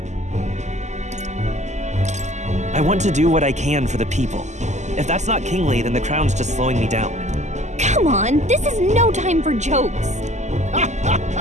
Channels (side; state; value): left; late; 0.34 ms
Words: I want to do what I can for the people. If that's not kingly, then the crown's just slowing me down. Come on, this is no time for jokes.